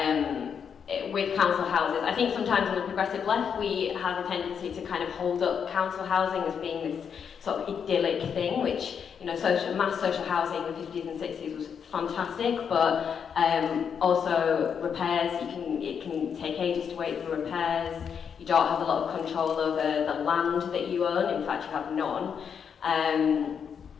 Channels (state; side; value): quieter; right; 7.2 dB